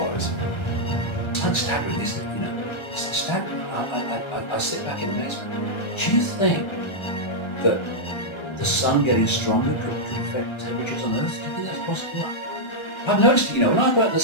It's staggering, isn't it? You know, it's staggering. I sit back in amazement. Do you think that the sun getting stronger could affect temperatures on Earth? Do you think that's possible? I've noticed it, you know, when I go out in the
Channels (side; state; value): right; late; 1.3 ms